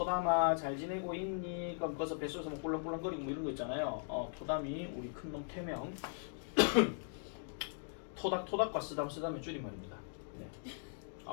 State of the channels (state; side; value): silent; right; digital silence